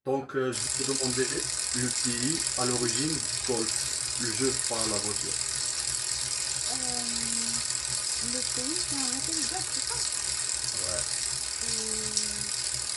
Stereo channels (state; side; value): identical; both; correlation 1.00